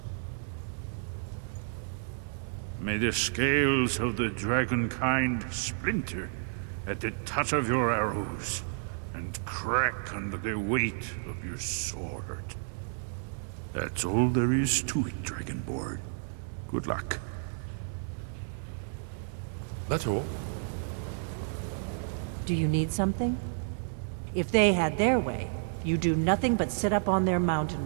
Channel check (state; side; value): silent; left; digital silence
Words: May the scales of the dragon kind splinter at the touch of your arrows, and crack under the weight of your sword. That's all there is to it, Dragonborn. Good luck. That's all. Do you need something? If they had their way, you do nothing but sit up on their mountain